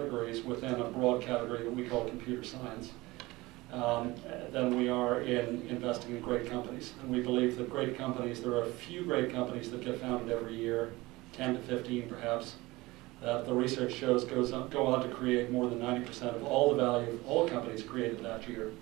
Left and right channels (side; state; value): left; quieter; 20.8 dB